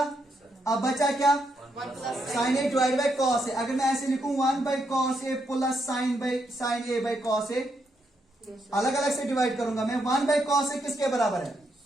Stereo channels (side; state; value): both; normal; correlation 0.78